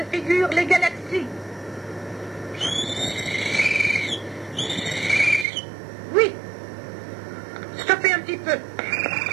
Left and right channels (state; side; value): drops out; left; at 5.5 s